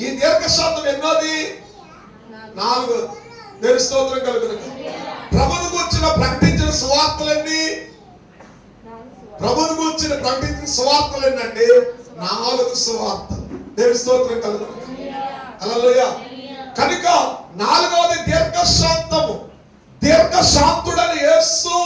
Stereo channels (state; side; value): identical; both; correlation 1.00